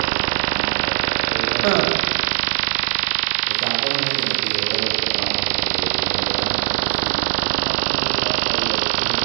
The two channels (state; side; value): silent; left; digital silence